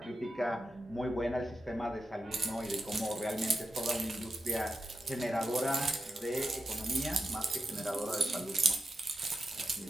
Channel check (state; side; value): normal; both; correlation 0.88